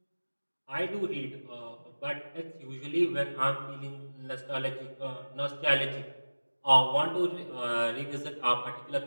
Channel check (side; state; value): both; inverted; correlation -1.00